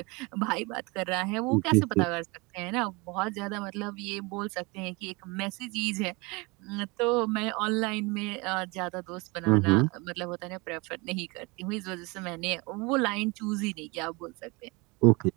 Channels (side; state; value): left; quieter; 26.7 dB